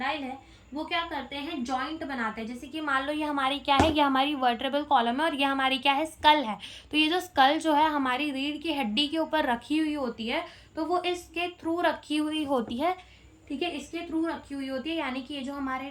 है वो क्या करते हैं, जॉइंट बनाते हैं। जैसे कि मान लो ये हमारी क्या है, ये हमारी वर्टेब्रल कॉलम है और ये हमारी क्या है, स्कल है। तो ये जो स्कल जो है हमारी रीढ़ की हड्डी के ऊपर रखी हुई होती है, तो वो इसके थ्रू रखी हुई होती है, ठीक है, इसके थ्रू रखी हुई होती है। यानी कि ये जो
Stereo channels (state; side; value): identical; both; correlation 1.00